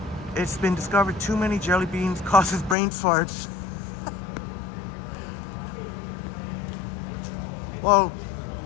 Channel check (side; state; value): right; drops out; at 2.8 s